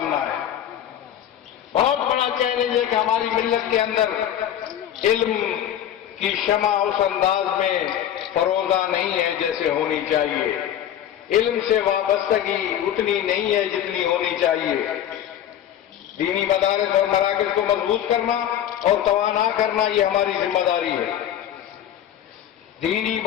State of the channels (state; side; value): quieter; right; 10.7 dB